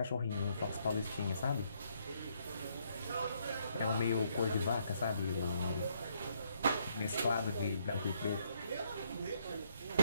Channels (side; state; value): both; inverted; correlation -0.71